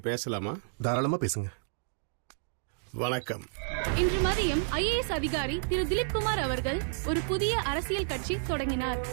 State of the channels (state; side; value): silent; left; digital silence